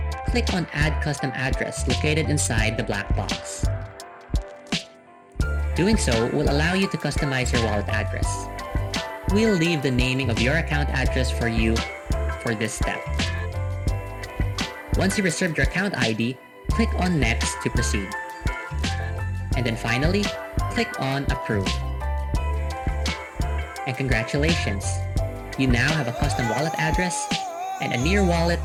click on Add Custom Address located inside the black box. Doing so will allow you to customize your wallet address. We'll leave the naming of your account address for you for this step. Once you reserved your account ID, click on Next to proceed. And then finally, click on Approve. And congratulations! You now have a custom wallet address and a Near wallet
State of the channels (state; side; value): identical; both; correlation 1.00